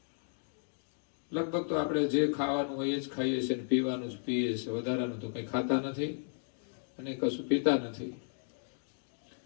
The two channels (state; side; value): silent; right; digital silence